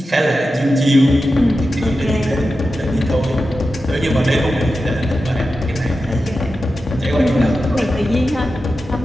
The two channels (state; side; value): normal; both; correlation 0.92